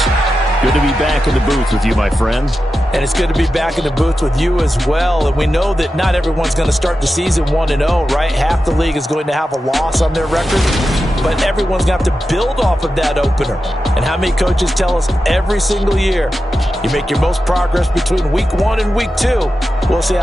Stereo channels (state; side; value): normal; both; correlation 0.91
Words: Good to be back in the booth with you, my friend. And it's good to be back in the booth with you as well. And we know that not everyone's going to start the season 1-0, right? Half the league is going to have a loss on their record. But everyone's going to have to build off of that opener. And how many coaches tell us every single year, you make your most progress between Week 1 and Week 2. We'll see